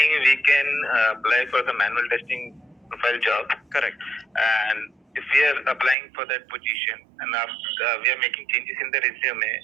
we can apply for the manual testing profile job. Correct. And if we are applying for that position and we are making changes in the resume,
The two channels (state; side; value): drops out; left; at 6.0 s